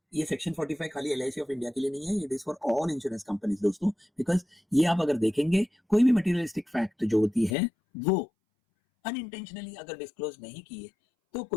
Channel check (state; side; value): drops out; right; at 7.6 s